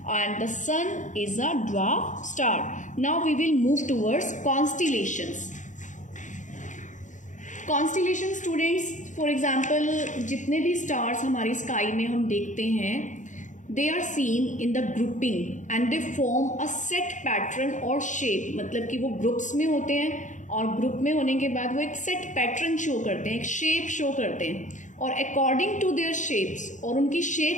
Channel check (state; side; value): late; right; 0.36 ms